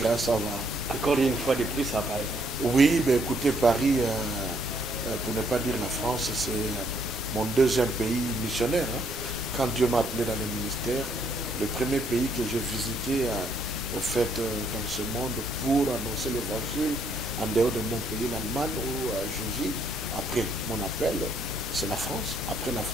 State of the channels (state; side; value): normal; both; correlation 0.69